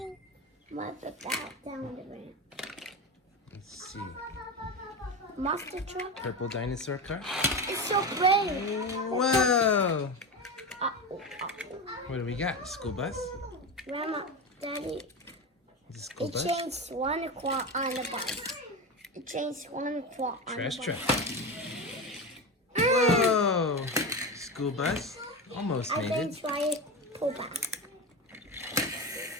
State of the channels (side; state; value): both; normal; correlation 0.20